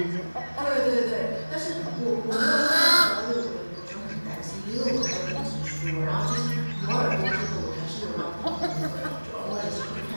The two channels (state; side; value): inverted; both; correlation -1.00